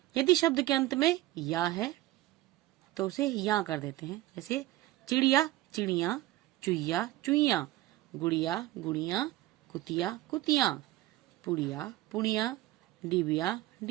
यदि शब्द के अंत में या है तो उसे या कर देते हैं, जैसे चिड़िया चिड़िया, चुईया चुईया, गुड़िया गुड़िया, कुतिया कुतिया, पुड़िया पुड़िया, डिबिया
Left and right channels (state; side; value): quieter; left; 16.1 dB